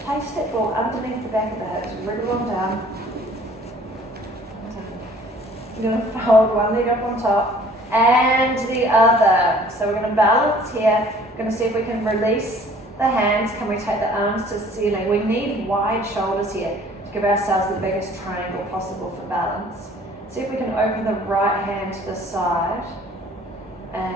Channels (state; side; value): normal; both; correlation 0.53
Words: place that ball underneath the back of the hips. Wriggle them down. You're going to fold one leg up on top and the other. So we're going to balance here. We're going to see if we can release the hands. Can we take the arms to the ceiling? We need wide shoulders here to give ourselves the biggest triangle possible for balance. See if we can open the right hand to the side